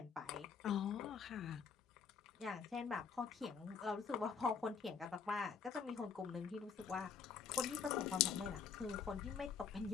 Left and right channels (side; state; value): right; quieter; 6.3 dB